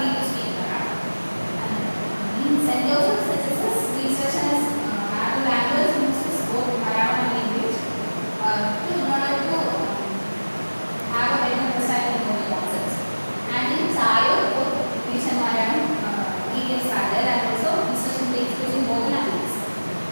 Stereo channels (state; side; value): inverted; both; correlation -1.00